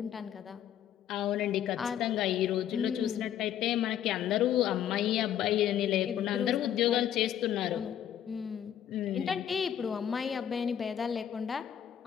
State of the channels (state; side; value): quieter; right; 10.3 dB